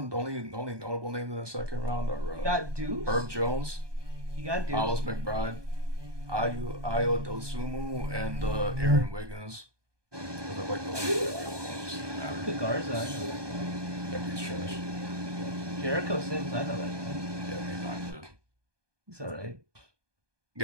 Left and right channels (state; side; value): late; left; 1.2 ms